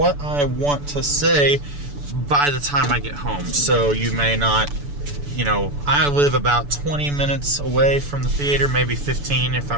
I want to say by the time I get home. So you may not, you know, I live about 20 minutes away from the theater, maybe 15 if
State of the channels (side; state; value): left; late; 6.9 ms